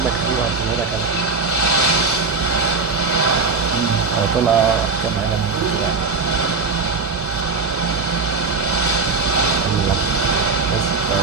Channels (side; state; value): left; quieter; 4.3 dB